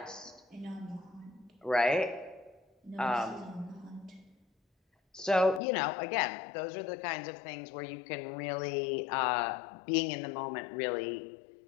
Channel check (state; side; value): drops out; right; at 5.6 s